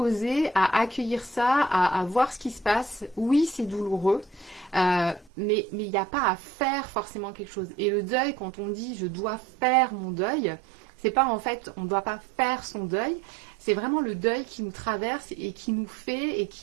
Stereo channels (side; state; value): left; drops out; at 5.3 s